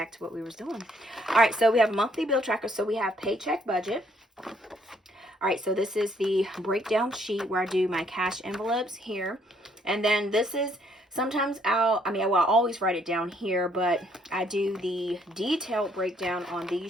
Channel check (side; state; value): both; normal; correlation 0.67